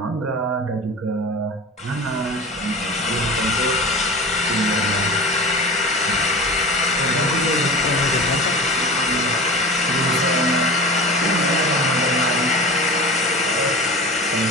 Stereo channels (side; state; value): both; normal; correlation 0.33